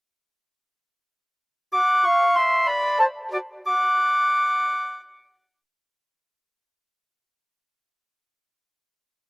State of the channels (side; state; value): both; identical; correlation 1.00